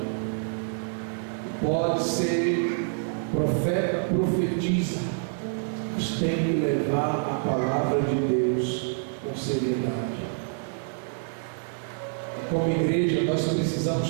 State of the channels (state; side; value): silent; left; digital silence